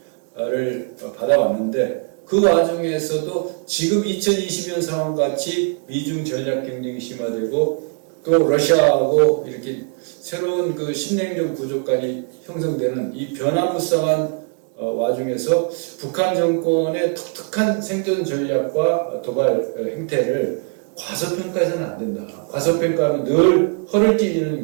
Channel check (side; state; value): left; quieter; 38.0 dB